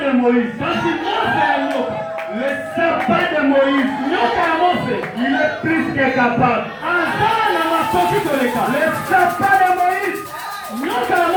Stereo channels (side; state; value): both; identical; correlation 1.00